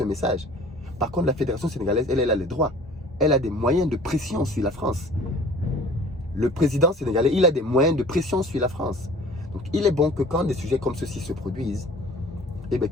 message. Par contre, la Fédération sénégalaise, elle a les droits. Elle a des moyens de pression sur la France. Le président sénégalais, il a des moyens de pression sur la France. Donc, il est bon que quand des sujets comme ceci se produisent, eh bien,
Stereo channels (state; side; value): normal; both; correlation 0.47